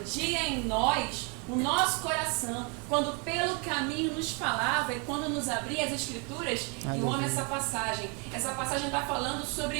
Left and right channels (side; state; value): left; quieter; 34.0 dB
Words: em nós o nosso coração, quando pelo caminho nos falava e quando nos abria as Escrituras? E eu amo essa passagem. Essa passagem está falando